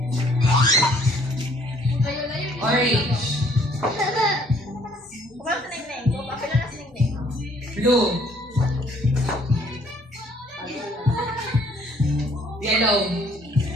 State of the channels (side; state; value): both; normal; correlation 0.61